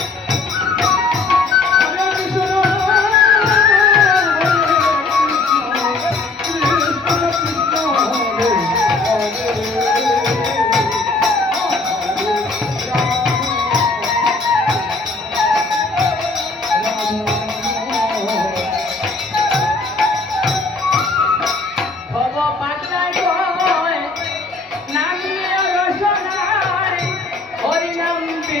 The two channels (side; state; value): right; quieter; 3.6 dB